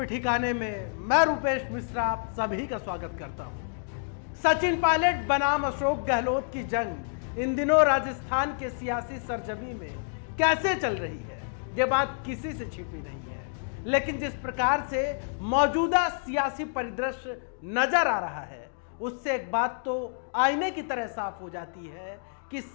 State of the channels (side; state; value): right; silent; digital silence